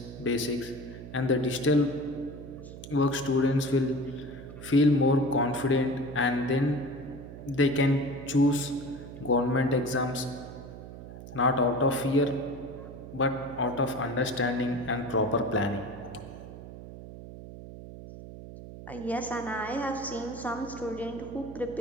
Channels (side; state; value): right; noise; hum, 13 dB below the sound